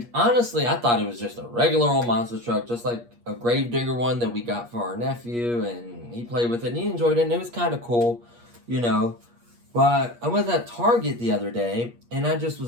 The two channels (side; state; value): left; late; 8.4 ms